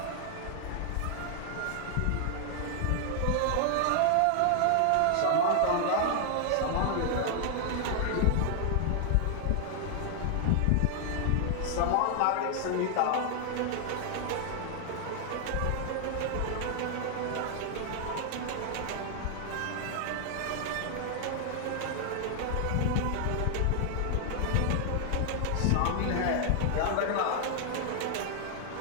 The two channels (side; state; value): both; different; correlation 0.00